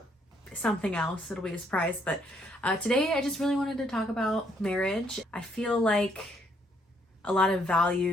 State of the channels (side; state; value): both; normal; correlation 0.70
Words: something else. It'll be a surprise, but today I just really wanted to talk about marriage. I feel like a lot of